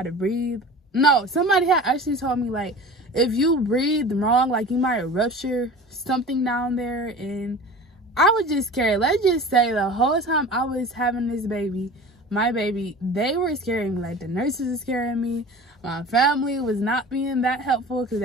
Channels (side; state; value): both; normal; correlation 0.38